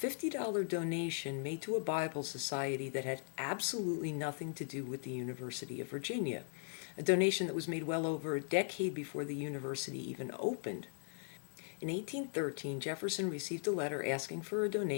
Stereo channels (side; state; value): right; silent; digital silence